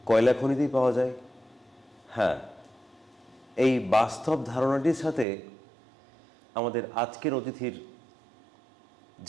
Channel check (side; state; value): left; drops out; at 5.2 s